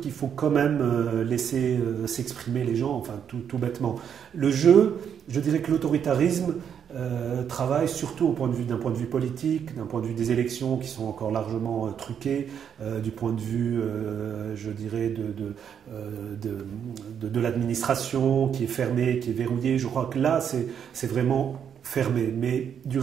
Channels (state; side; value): quieter; left; 8.1 dB